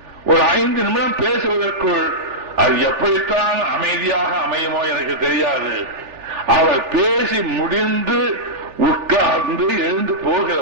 ஒரு 5 நிமிடம் பேசுவதற்குள் அது எப்படித்தான் அமைதியாக அமையுமோ எனக்கு தெரியாது. அவர் பேசி முடிந்து உட்கார்ந்து எழுந்து போகிற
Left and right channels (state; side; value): late; left; 3.4 ms